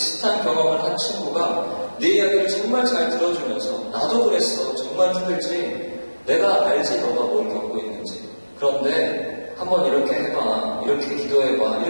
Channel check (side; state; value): both; inverted; correlation -1.00